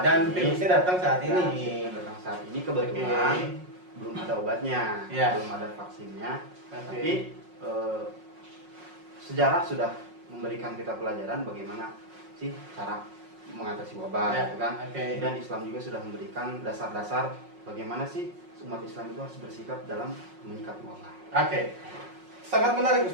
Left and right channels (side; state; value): left; late; 5.5 ms